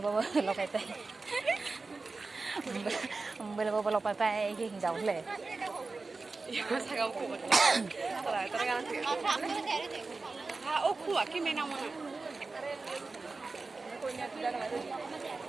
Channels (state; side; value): quieter; left; 3.8 dB